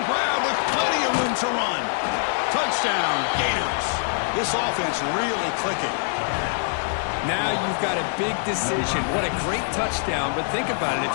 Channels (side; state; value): right; silent; 63 dB below the other